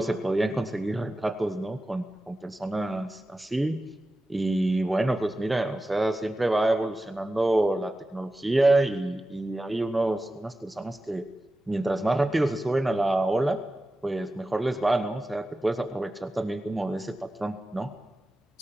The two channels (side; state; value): both; normal; correlation 0.94